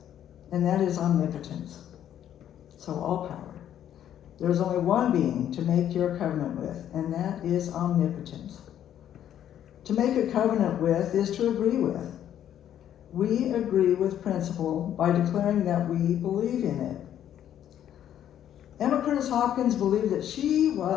and that is omnipotence. So all power. There's only one being to make your covenant with, and that is omnipotence. To make a covenant with is to agree with. We agree with principle by declaring that we believe in it. Emma Curtis Hopkins believed that she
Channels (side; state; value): right; quieter; 10.6 dB